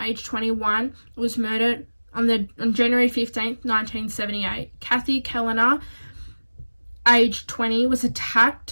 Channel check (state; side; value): inverted; both; correlation -1.00